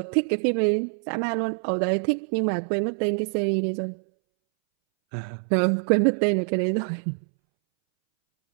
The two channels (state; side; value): silent; left; 62 dB below the other